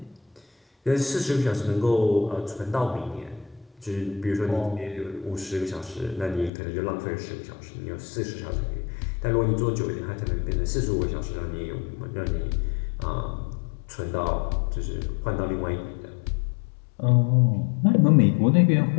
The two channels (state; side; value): drops out; right; at 6.5 s